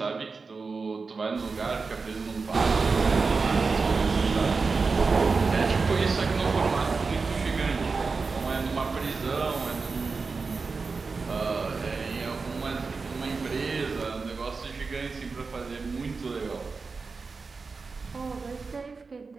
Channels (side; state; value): left; quieter; 4.5 dB